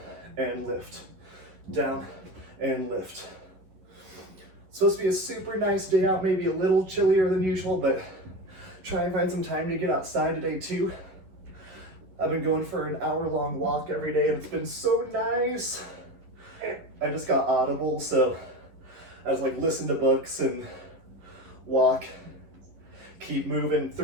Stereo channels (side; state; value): left; late; 11 ms